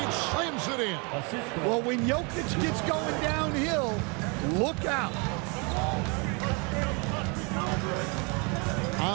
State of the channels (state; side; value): quieter; left; 32.0 dB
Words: slams it in. Well, when Jokic gets going downhill, look out.